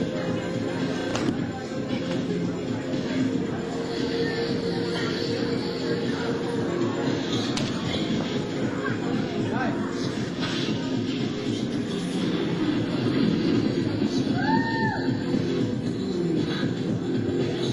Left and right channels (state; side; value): identical; both; correlation 1.00